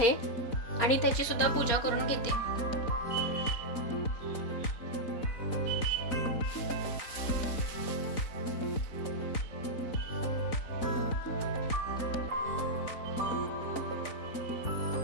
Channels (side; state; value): right; late; 4.0 ms